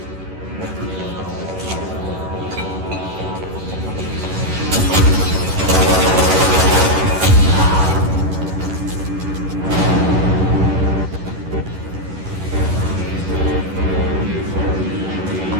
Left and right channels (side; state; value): left; late; 11 ms